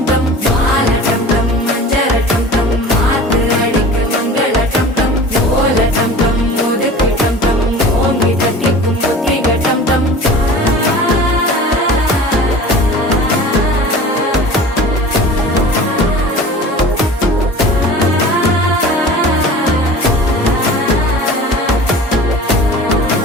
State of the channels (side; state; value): both; normal; correlation 0.39